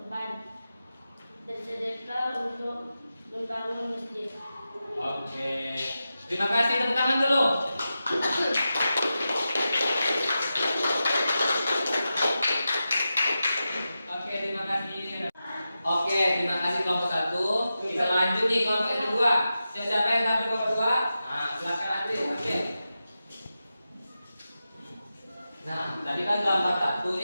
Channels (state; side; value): inverted; both; correlation -0.91